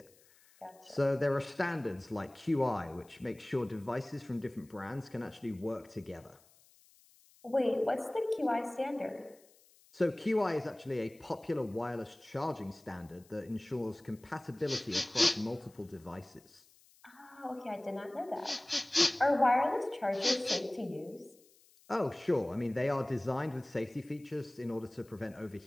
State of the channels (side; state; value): left; noise; hiss, 28 dB below the sound